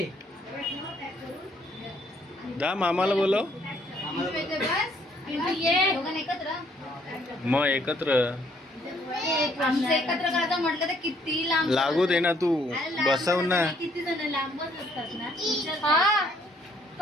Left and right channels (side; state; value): both; normal; correlation 0.66